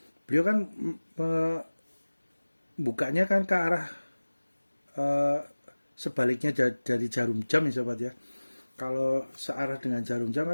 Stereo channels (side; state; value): both; inverted; correlation -1.00